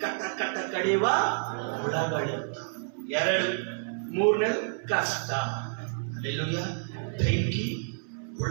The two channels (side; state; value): left; silent; 58 dB below the other